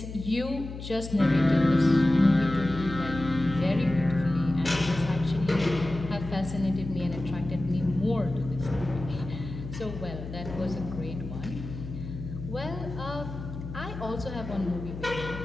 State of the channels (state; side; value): noise; left; hum, 10 dB below the sound